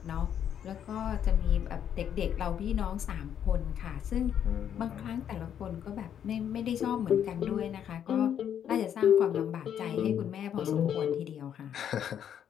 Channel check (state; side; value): quieter; right; 9.3 dB